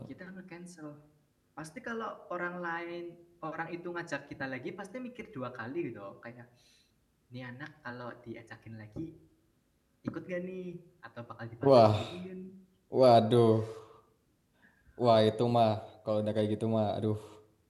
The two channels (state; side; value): identical; both; correlation 1.00